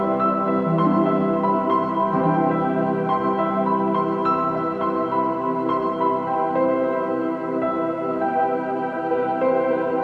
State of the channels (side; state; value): both; identical; correlation 1.00